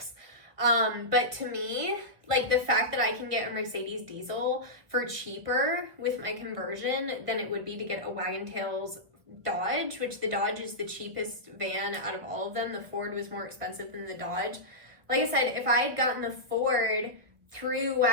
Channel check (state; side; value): late; left; 1.3 ms